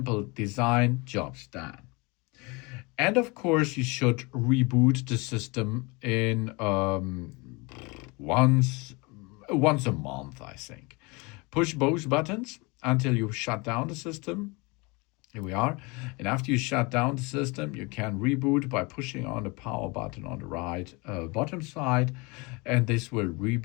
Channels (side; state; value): right; quieter; 27.3 dB